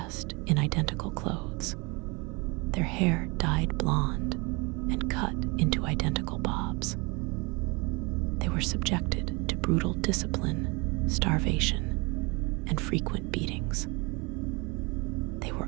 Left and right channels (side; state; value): left; quieter; 27.9 dB